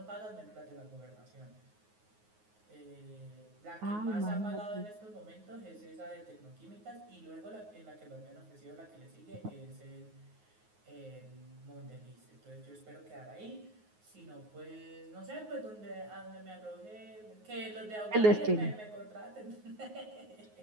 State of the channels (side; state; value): left; late; 9.5 ms